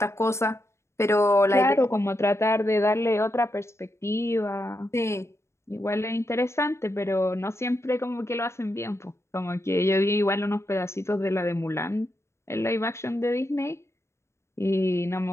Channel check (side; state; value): right; late; 0.13 ms